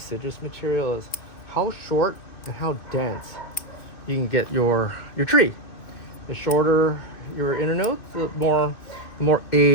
material, is how short and how dense you can get your tree. The shorter your internodes, the more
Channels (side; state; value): right; late; 2.7 ms